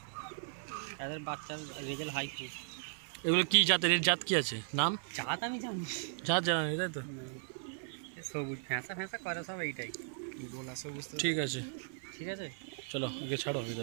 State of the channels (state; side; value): silent; left; 53 dB below the other